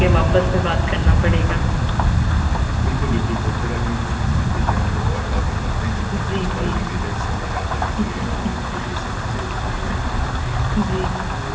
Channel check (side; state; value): both; identical; correlation 1.00